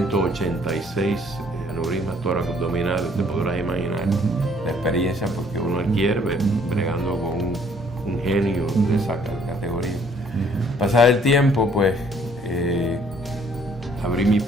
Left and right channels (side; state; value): both; normal; correlation 0.61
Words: aneurismas tóraco-abdominales. Te podrás imaginar la experiencia porque uno adquiere bregando con un genio de esa categoría. Pasado el tiempo, pues abrí mi